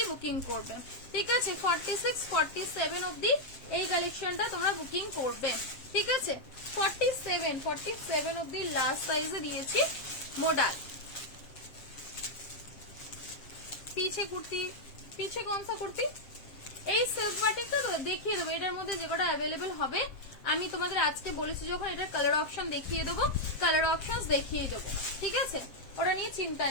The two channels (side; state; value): right; late; 7.4 ms